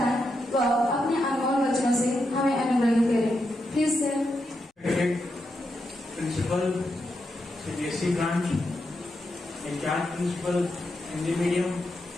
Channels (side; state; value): both; normal; correlation 0.84